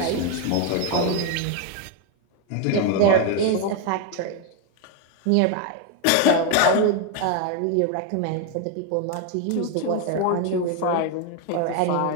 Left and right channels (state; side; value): different; both; correlation 0.01